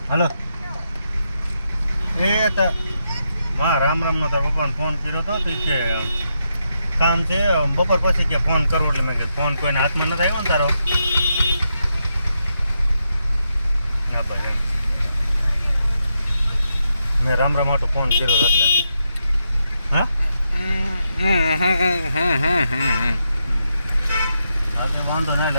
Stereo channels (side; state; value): both; inverted; correlation -0.83